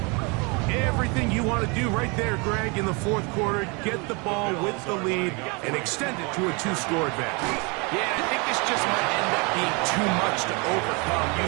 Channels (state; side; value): quieter; left; 30.3 dB